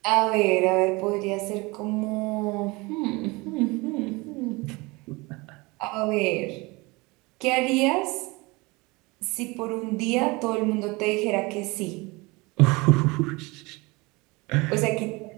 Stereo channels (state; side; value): quieter; left; 24.5 dB